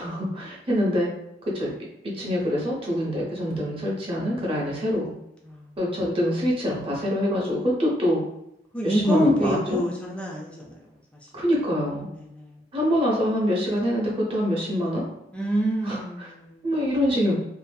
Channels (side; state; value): both; normal; correlation 0.76